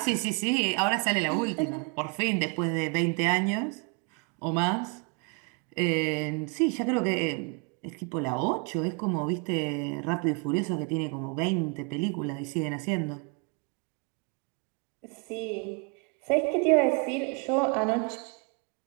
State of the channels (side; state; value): left; quieter; 33.5 dB